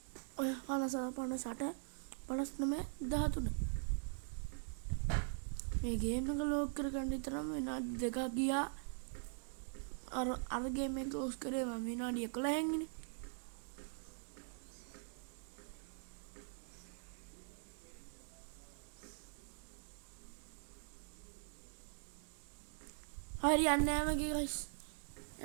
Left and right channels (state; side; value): silent; left; digital silence